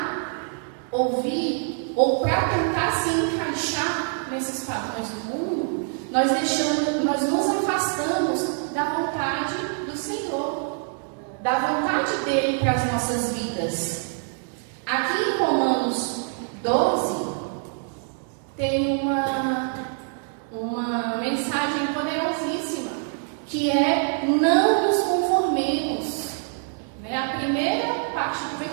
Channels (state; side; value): silent; left; 57 dB below the other